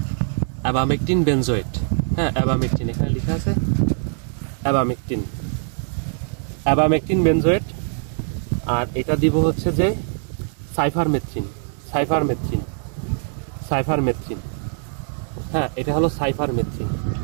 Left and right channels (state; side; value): silent; left; 61 dB below the other